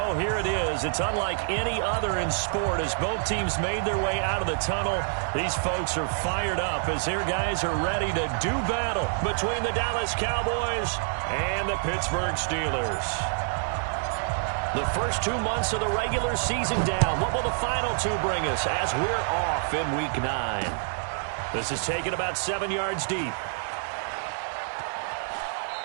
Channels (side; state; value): left; silent; digital silence